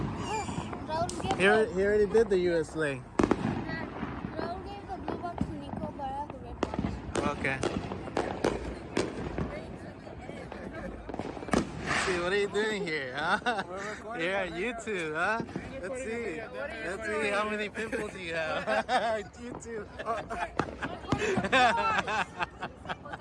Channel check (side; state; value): both; identical; correlation 1.00